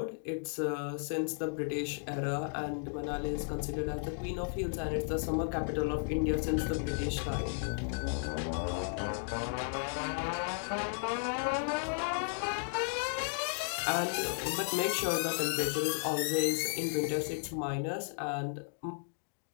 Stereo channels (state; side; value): silent; right; digital silence